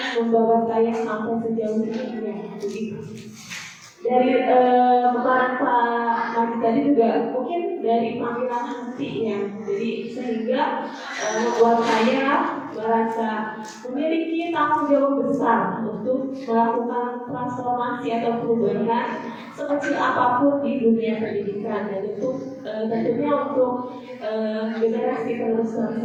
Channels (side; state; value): both; identical; correlation 1.00